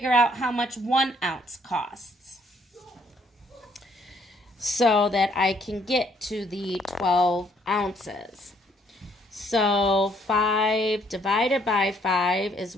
out how much 1 ounce costs so that I can get to the 12 ounces. So 5 divided by 5 is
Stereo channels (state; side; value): normal; both; correlation 0.67